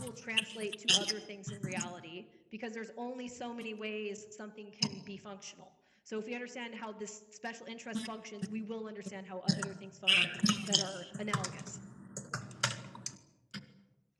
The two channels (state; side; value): identical; both; correlation 1.00